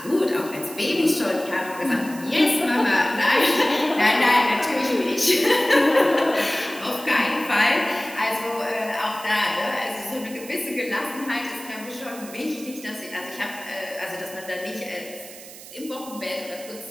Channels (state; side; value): noise; right; hiss, 16 dB below the sound